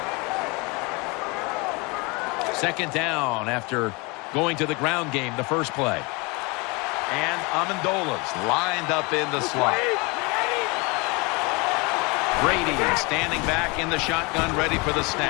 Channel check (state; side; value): quieter; right; 27.9 dB